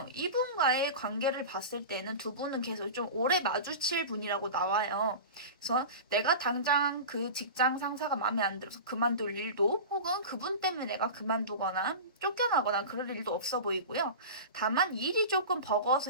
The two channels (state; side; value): inverted; both; correlation -0.30